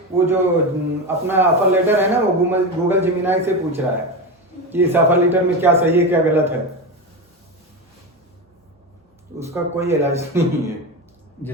वो जो अपना ऑफर लेटर है ना, वो गूगल जिमिनाई से पूछ रहा है कि इस ऑफर लेटर में क्या सही है क्या गलत है। उसका कोई इलाज नहीं है।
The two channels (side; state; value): both; normal; correlation 0.19